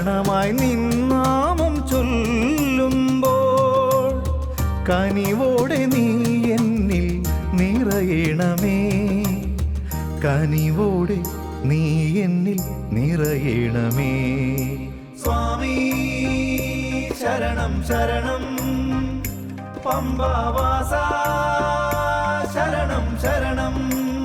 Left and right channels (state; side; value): identical; both; correlation 1.00